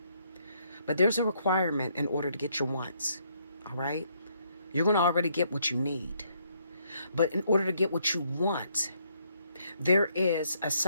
But there's a requirement in order to get your wants. All right? You're going to already get what you need. But in order to get what you want, There is a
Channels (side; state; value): both; inverted; correlation -0.71